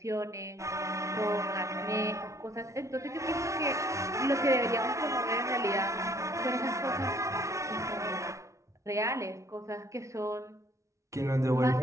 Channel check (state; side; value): late; left; 0.14 ms